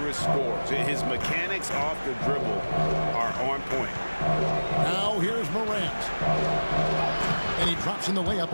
scorers. His mechanics off the dribble are on point. Now here's Morant. And he drops in the layup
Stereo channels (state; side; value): inverted; both; correlation -1.00